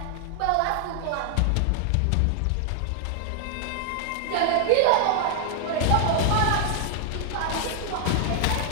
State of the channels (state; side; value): different; both; correlation 0.00